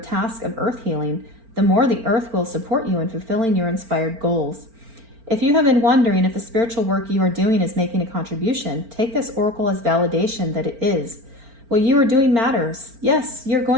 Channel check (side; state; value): left; late; 4.4 ms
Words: of earth healing, the more the earth will support you in fulfilling your inspired goals. If you have been wondering if the spiritual work you are doing is making a contribution, take this oracle as validation that it is. What you are doing matters. Yes, you're